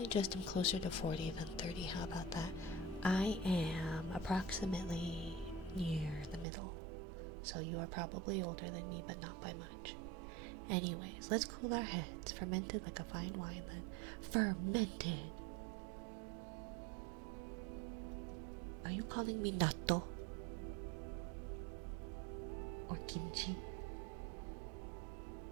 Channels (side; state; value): left; drops out; at 6.5 s